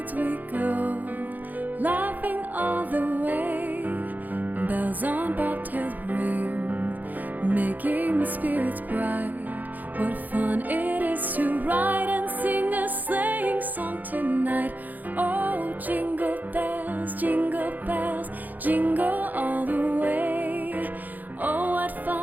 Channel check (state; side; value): late; left; 0.083 ms